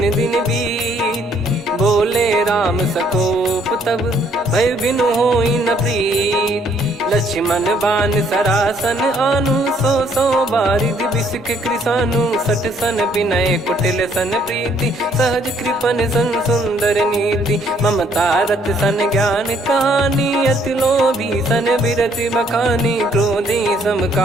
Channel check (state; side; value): normal; both; correlation 0.65